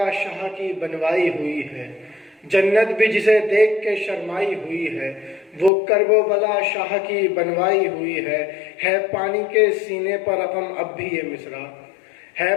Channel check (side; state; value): right; drops out; at 5.7 s